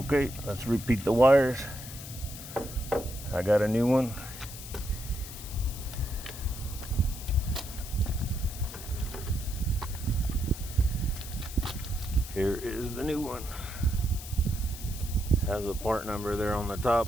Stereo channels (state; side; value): noise; left; hiss, 12 dB below the sound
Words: let's repeat the wires. I got a new one. Here is the new one. Has a part number there on the